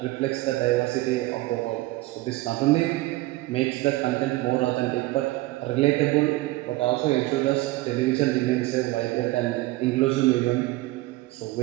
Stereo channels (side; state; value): left; quieter; 19.2 dB